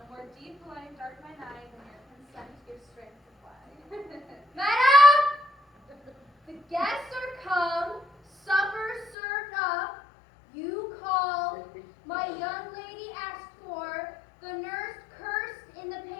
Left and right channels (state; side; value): drops out; right; at 9.2 s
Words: more deep line dark mine eye than your consent gives strength to fly. Madam! The guests are come, supper served up. You called, my young lady asked for, the nurse cursed in the